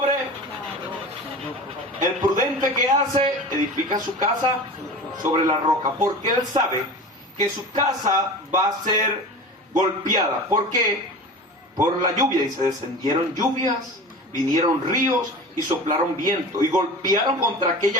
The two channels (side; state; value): both; normal; correlation 0.34